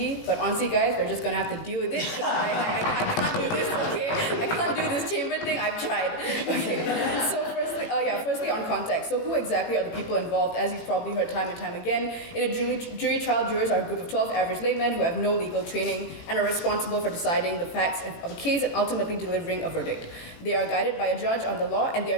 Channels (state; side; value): late; right; 18 ms